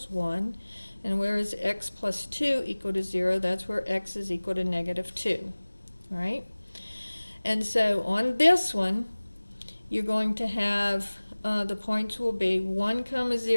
1. And where is x plus 2 equal to 0? That's where x is equal to negative 2. All right? And so on this one, you're going to have the points will be 1 comma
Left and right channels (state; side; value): inverted; both; correlation -1.00